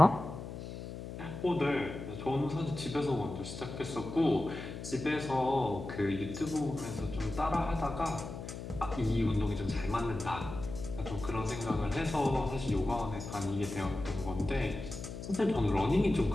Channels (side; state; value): left; noise; hum, 9 dB below the sound